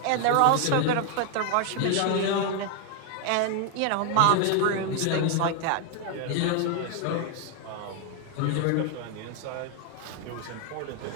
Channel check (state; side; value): different; both; correlation 0.01